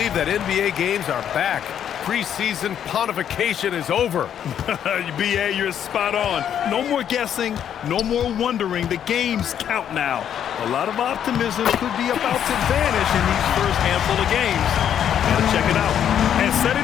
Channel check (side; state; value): right; quieter; 9.4 dB